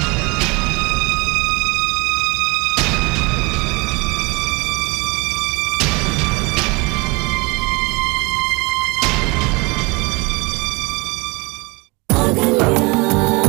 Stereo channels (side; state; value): left; quieter; 26.9 dB